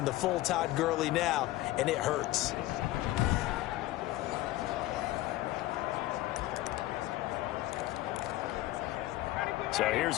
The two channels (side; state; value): right; quieter; 16.6 dB